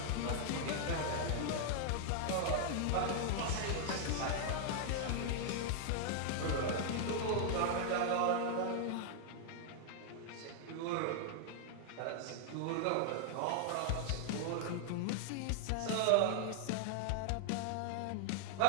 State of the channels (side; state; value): both; different; correlation 0.00